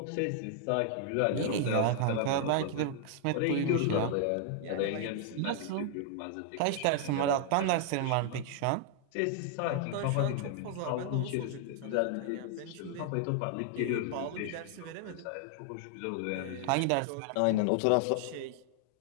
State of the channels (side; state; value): both; different; correlation 0.00